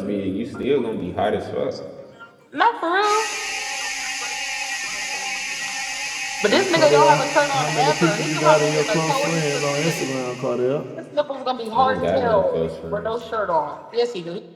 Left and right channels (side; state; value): both; identical; correlation 1.00